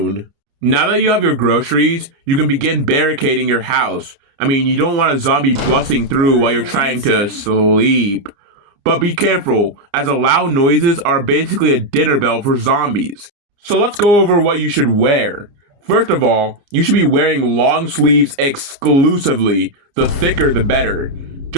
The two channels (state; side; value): late; left; 29 ms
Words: Now that you have your groceries, you can begin barricading your house. I mean, you don't want a zombie busting through while you're trying to sleep. But be careful, as loud noises are basically a dinner bell for zombies. So let's go over what you should wear. First of all, you should be wearing long sleeves exclusively. The thicker, the better.